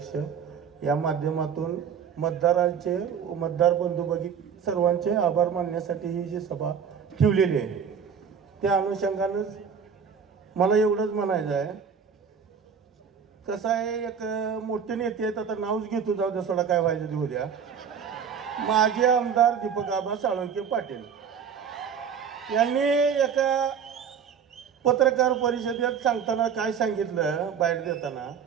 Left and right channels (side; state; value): left; quieter; 7.1 dB